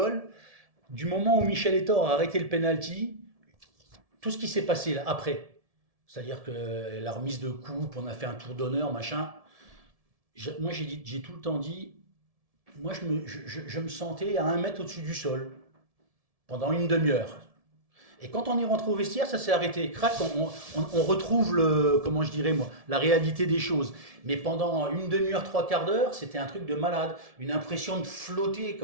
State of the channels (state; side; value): late; left; 1.7 ms